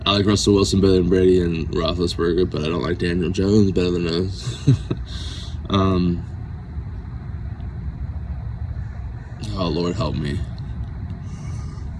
I like Russell Wilson better than Brady and Roethlisberger, but I don't like Daniel Jones better than those. Oh Lord, help me.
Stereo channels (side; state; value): both; identical; correlation 1.00